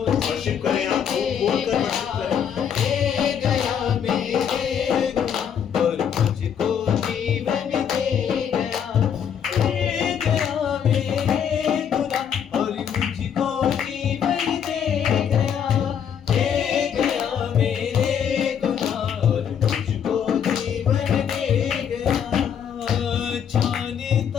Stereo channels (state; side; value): quieter; right; 8.2 dB